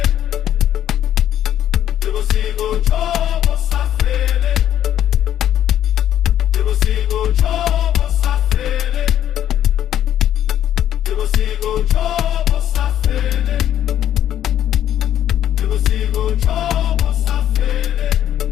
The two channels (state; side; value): quieter; right; 11.0 dB